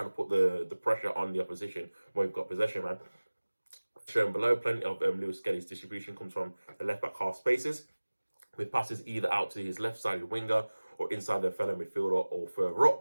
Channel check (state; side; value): inverted; both; correlation -1.00